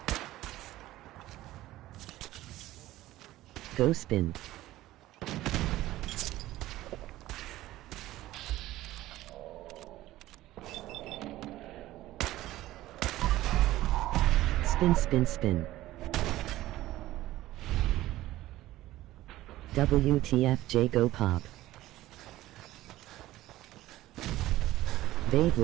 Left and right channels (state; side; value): quieter; left; 15.8 dB